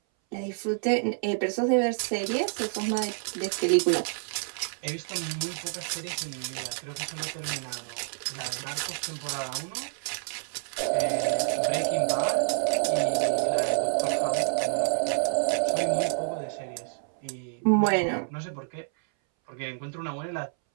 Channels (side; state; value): left; silent; 59 dB below the other